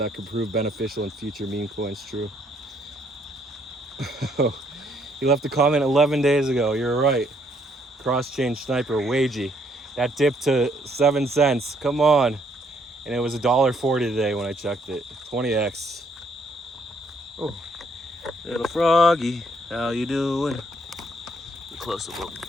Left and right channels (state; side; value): normal; both; correlation 0.68